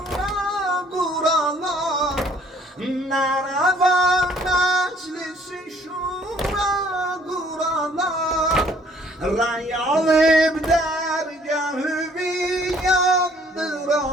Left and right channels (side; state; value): both; normal; correlation 0.59